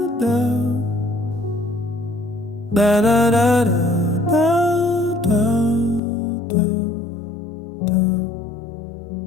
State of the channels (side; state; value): right; drops out; at 6.0 s